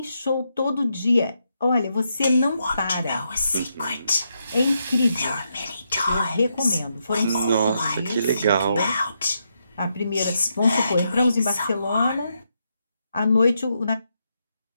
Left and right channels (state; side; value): inverted; both; correlation -0.82